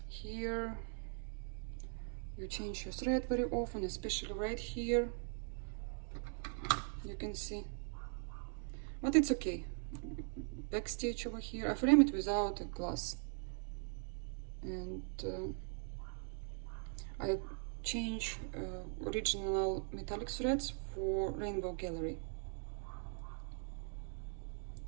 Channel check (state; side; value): silent; left; 50 dB below the other